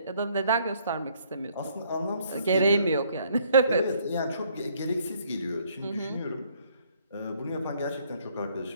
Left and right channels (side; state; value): both; inverted; correlation -0.64